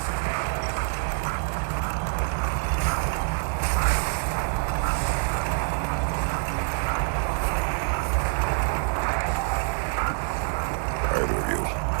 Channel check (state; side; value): silent; left; 61 dB below the other